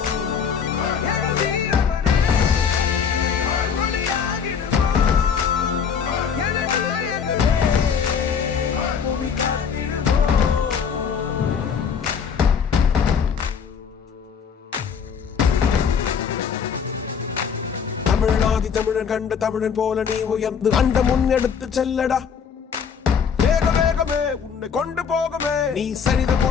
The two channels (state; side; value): quieter; right; 6.8 dB